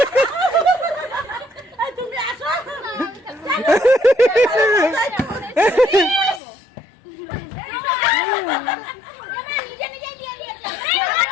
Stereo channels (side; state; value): right; drops out; at 6.4 s